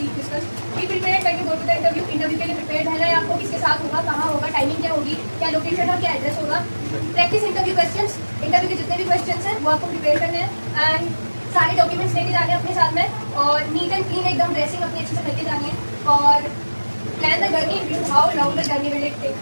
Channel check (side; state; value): both; inverted; correlation -1.00